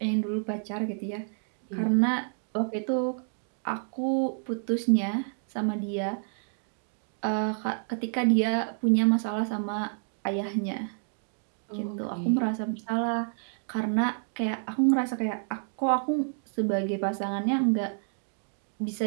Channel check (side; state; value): left; silent; digital silence